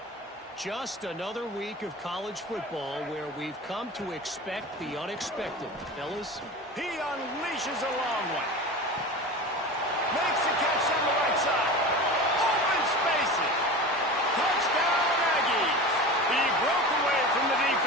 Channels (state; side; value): normal; both; correlation 0.31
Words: Just another week of college football where we've come to expect the unexpected. Fellas? He unleashes a long one. Makes the catch on the right side. Open spaces. Touchdown, Aggies. He broke away from the